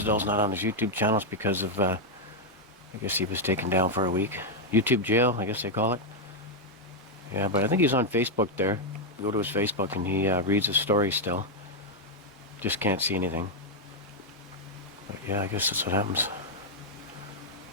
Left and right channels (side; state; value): both; normal; correlation 0.00